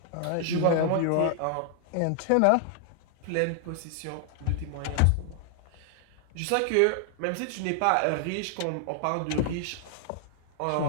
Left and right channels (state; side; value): different; both; correlation 0.00